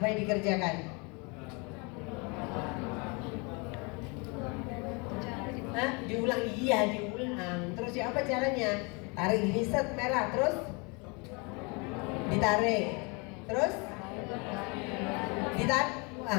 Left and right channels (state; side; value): quieter; right; 30.5 dB